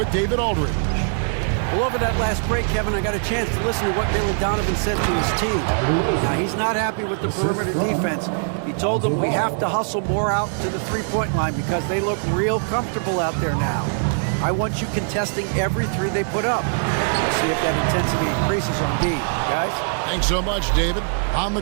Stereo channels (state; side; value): silent; left; digital silence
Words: David Aldridge. Well, over that last break, Kevin, I got a chance to listen to what Billy Donovan said to his team. Now, he's not happy with the perimeter defense. He told them we have to hustle more out to the three-point line because they look real comfortable out there now. I want you contesting every three they put up. We'll see if that intensity increases on D. Guys? Thanks so much, David. On the